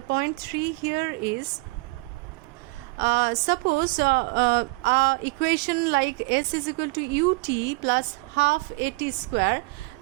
3 here is, suppose equation like s is equal to ut plus half at square.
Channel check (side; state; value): left; quieter; 26.4 dB